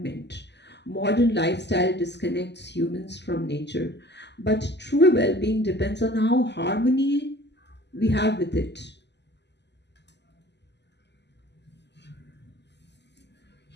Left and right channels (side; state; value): right; late; 0.50 ms